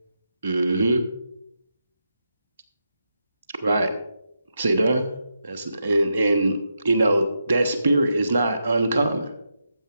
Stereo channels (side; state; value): both; inverted; correlation -0.85